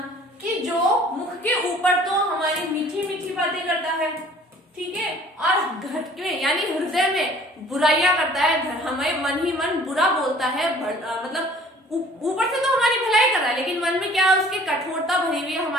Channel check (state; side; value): normal; both; correlation 0.52